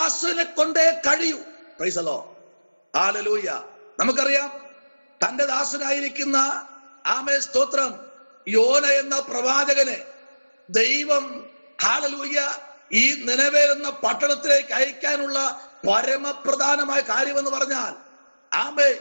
കൊണ്ടേ കഴിയൂ. Price the Lord. ഹല്ലേലൂയ. നമുക്കറിയാം, തന്റെ ദാസനായിരിക്കുന്ന ആമേ സ്തോത്രം യോന എന്ന പ്രവാചകനെ ദൈവം ഹല്ലേലൂയ ഈ നിനവേ എന്ന പട്ടണത്തിലേക്ക് അയക്കാനുള്ള പരമപ്രധാനമായ കാര്യമെന്ന് പറഞ്ഞാൽ, ആമേ,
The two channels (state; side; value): inverted; both; correlation -1.00